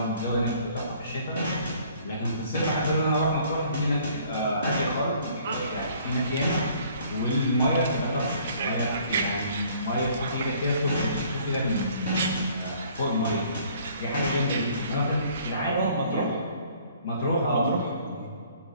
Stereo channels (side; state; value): both; inverted; correlation -0.58